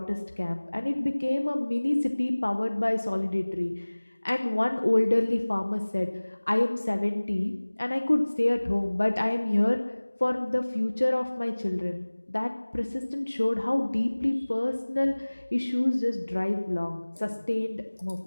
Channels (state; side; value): inverted; both; correlation -1.00